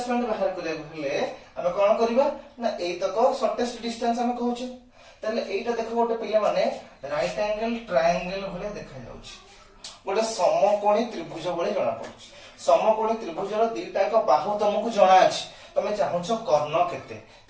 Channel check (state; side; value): identical; both; correlation 1.00